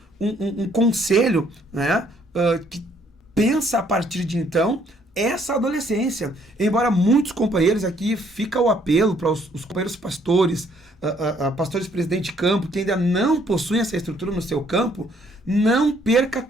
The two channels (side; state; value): both; normal; correlation 0.66